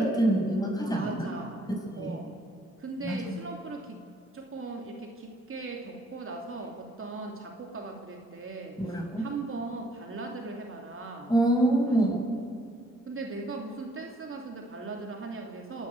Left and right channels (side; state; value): both; normal; correlation 0.64